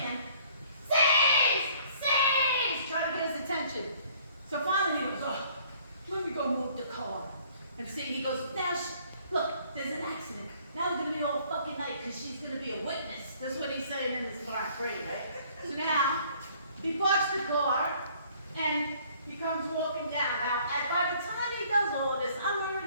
Sis! Sis! Trying to get his attention. So finally he goes, oh, let me go move the car. And see, he goes, now, look, there's an accident. Now we're going to be all fucking night because she's going to be a witness. That's what he's saying in this black grade, right? So now, he parks the car, and he comes walking down. Now, by the time he does all this, I'm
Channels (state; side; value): inverted; both; correlation -0.58